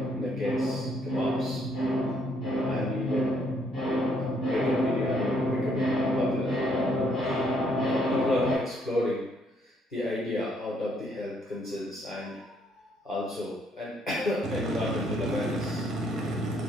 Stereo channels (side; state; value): both; normal; correlation 0.69